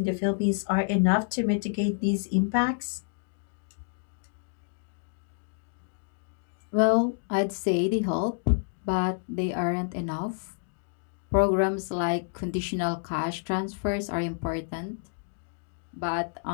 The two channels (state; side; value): silent; right; digital silence